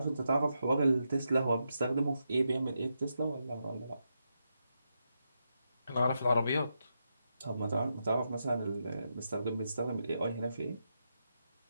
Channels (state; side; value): inverted; both; correlation -0.85